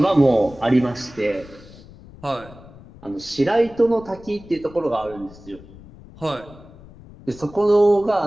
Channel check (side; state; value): left; noise; rumble, 20 dB below the sound